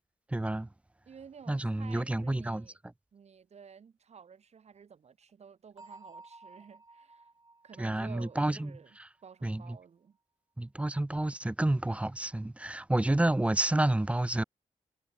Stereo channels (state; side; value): normal; both; correlation 0.89